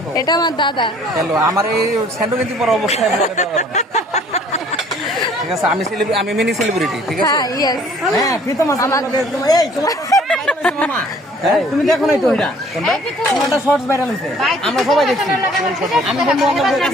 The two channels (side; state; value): both; normal; correlation 0.56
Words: এটা আমার দাদা। হ্যালো, আমার এই স্যান্ডো কিন্তু পর অবস্থায় ব্লগে দেওয়া যাবে না। ঠিক আছে, আমি মিনি সেলিব্রিটি, ঠিক আছে। হ্যাঁ, ইয়েস। হ্যাঁ, প্রীতম আমার এই তোমার মামা, তুমি দেখো না তো এটা তোমারটা শর্টস ভাইরাল হইছে, আমরা সবাই দেখছি। আমি বন্ধু বান্ধবের